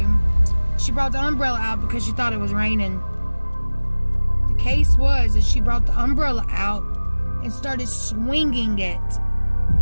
she brought the umbrella out because she thought it was raining. The case was that she brought the umbrella out and started swinging it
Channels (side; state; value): both; inverted; correlation -1.00